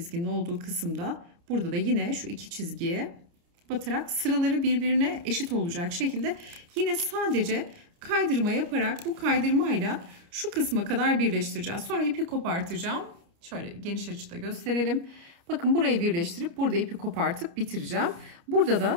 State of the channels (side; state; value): left; late; 29 ms